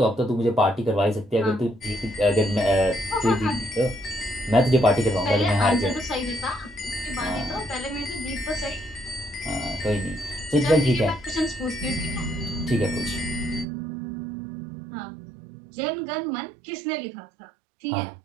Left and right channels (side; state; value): left; drops out; at 13.7 s